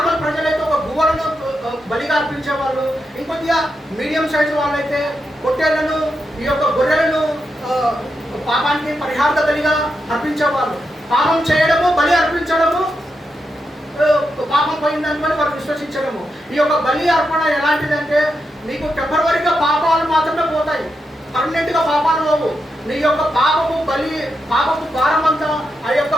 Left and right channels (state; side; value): normal; both; correlation 0.85